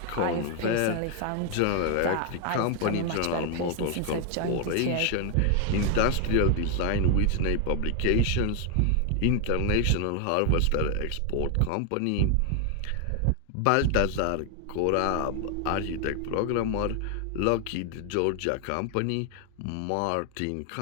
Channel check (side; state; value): both; different; correlation 0.00